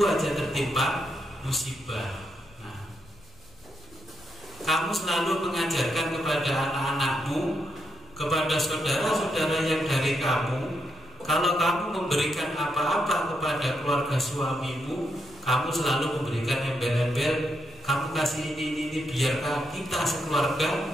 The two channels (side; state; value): left; noise; rumble, 25 dB below the sound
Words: aja tertimpa musibah. Kamu selalu mengajarkan kepada anak-anakmu, kepada saudara-saudara yang dari kamu, kalau kamu memberikan apa-apa kepada keluarga suamimu, kamu selalu memberikan embel-embel, kamu kasih ini biar kita